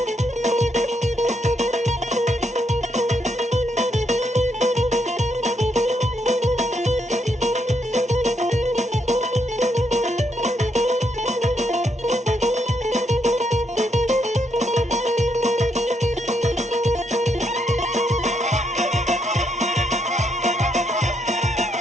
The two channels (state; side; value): normal; both; correlation 0.77